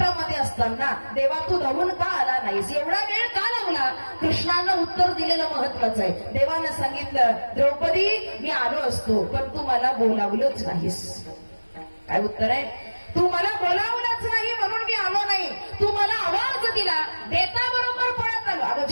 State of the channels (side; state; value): both; inverted; correlation -1.00